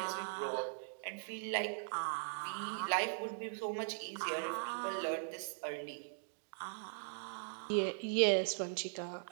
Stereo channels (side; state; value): left; silent; digital silence